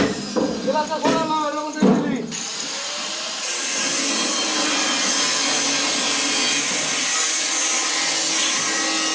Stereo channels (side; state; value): both; identical; correlation 1.00